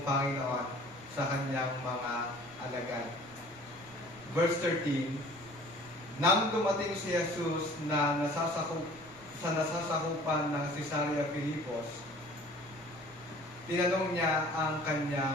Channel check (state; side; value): noise; right; rumble, 23 dB below the sound